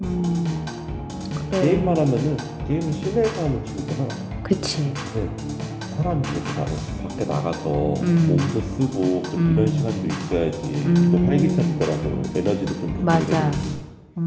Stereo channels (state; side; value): identical; both; correlation 1.00